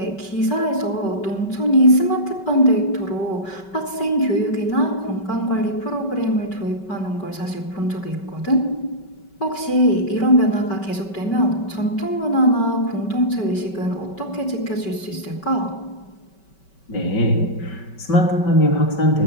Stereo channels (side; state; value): right; late; 5.2 ms